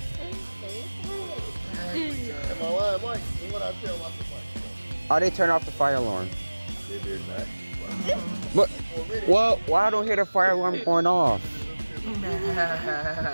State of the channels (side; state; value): both; inverted; correlation -1.00